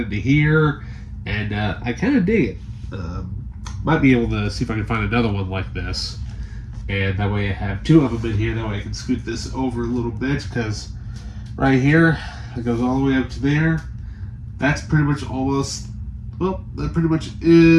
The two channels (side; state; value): both; identical; correlation 1.00